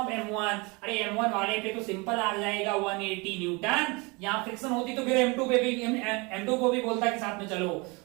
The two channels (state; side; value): quieter; left; 27.8 dB